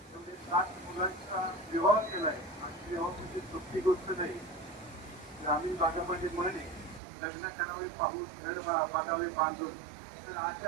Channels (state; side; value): drops out; left; at 7.0 s